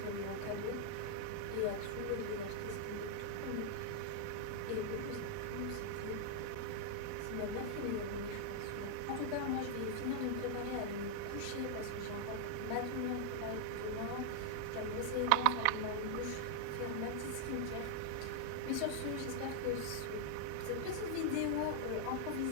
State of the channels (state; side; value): different; both; correlation 0.00